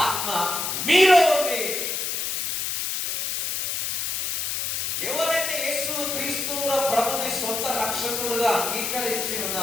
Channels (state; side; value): noise; left; hiss, 1 dB below the sound